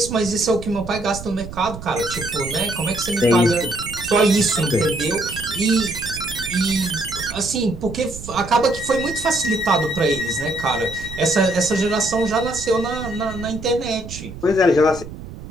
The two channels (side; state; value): right; noise; rumble, 12 dB below the sound